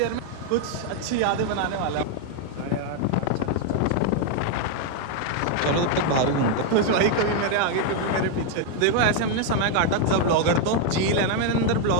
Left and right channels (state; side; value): different; both; correlation 0.01